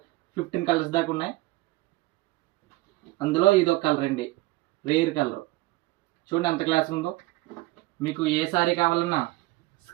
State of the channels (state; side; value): quieter; left; 19.6 dB